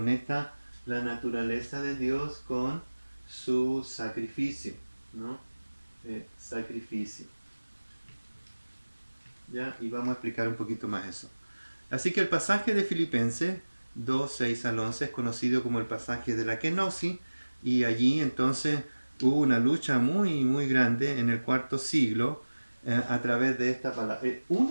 la naturaleza de Dios con su sacrificio, ¿no? Sacrificio. ¿Ya? Y vamos a explicar un poquito más eso. Así que el pasaje de Filipenses 2, 6 al 11 es conocido como el pasaje de la kenosis, y allí entonces hubo una lucha muy muy grande en el IV siglo a través de esta palabra.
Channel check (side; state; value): both; inverted; correlation -1.00